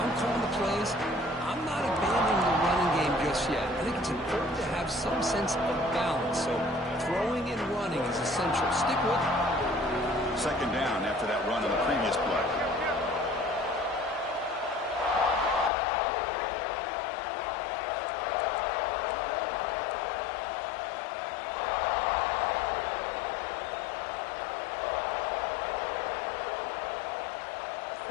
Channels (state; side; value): drops out; right; at 15.7 s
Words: calling the plays, I'm not abandoning the running game just yet. I think it's important to have some sense of balance. So throwing and running is essential. Stick with it. Second down after that run on the previous play.